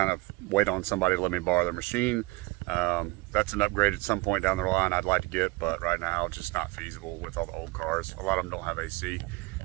of wait on somebody to let me borrow their machine. That's an upgrade at some point down the line I'd like to get, but right now it's just not feasible with all the old cars. A lot of them don't have AC,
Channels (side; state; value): left; quieter; 22.3 dB